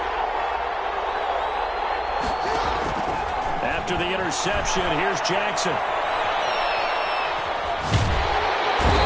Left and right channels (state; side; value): identical; both; correlation 1.00